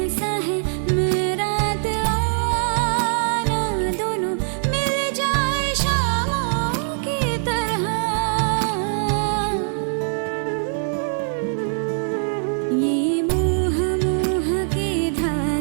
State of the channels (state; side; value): silent; left; 61 dB below the other